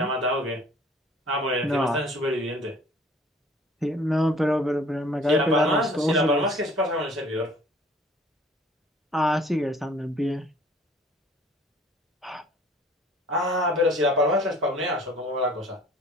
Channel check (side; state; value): both; normal; correlation 0.53